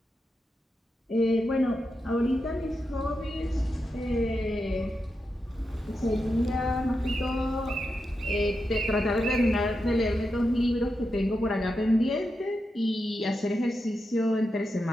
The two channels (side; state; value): both; normal; correlation 0.87